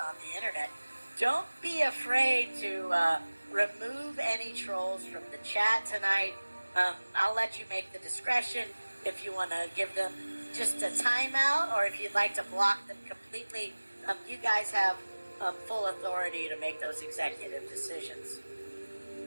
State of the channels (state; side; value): inverted; both; correlation -1.00